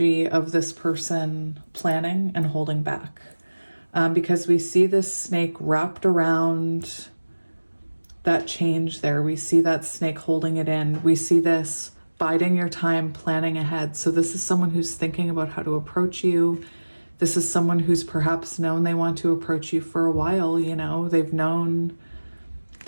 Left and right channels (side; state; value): both; inverted; correlation -1.00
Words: of this person planning and holding back, because we see this snake wrapped around that change there. We see that snake holding it in. We see this biding your time, planning ahead. So this is someone who's thinking about how to approach you. This is someone who's perhaps known they want to approach you for a while. You know, they've known